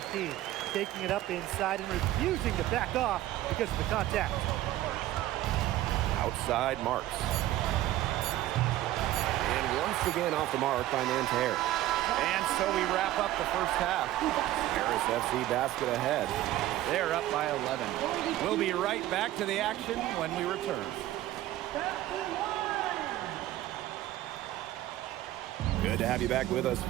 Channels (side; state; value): left; quieter; 14.7 dB